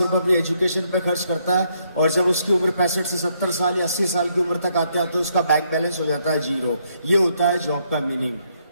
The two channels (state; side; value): inverted; both; correlation -0.73